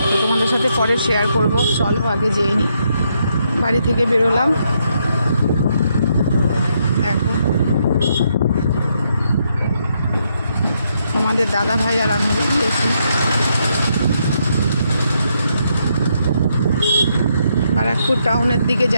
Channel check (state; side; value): inverted; both; correlation -0.77